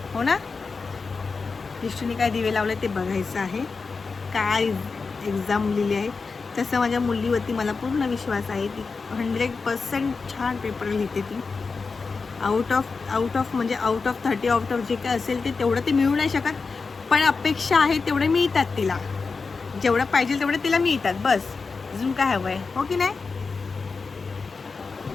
हो ना? दृष्टीने काय दिवे लावले ते बघायचं आहे. काय एक्झाम लिहिली आहे. तसं माझ्या मुलीवरती मला पूर्ण विश्वास आहे. ती 100% छान पेपर लिहिते. ती आउट ऑफ म्हणजे आउट ऑफ 30 जे काय असेल ते तेवढं ते मिळू नाही शकत, पण अपेक्षा आहे तेवढे मिळतात तिला. जेवढं पाहिजे तेवढे तिला मिळतात. बस अजून काय हवं आहे, हो की नाही?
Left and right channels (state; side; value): quieter; right; 4.5 dB